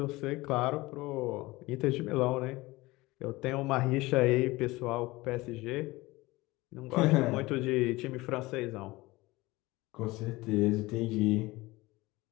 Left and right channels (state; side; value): quieter; right; 20.7 dB